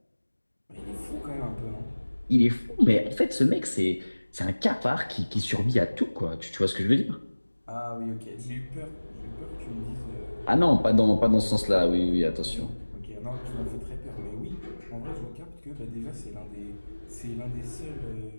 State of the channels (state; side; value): inverted; both; correlation -1.00